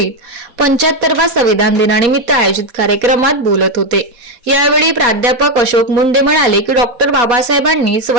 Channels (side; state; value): left; late; 4.1 ms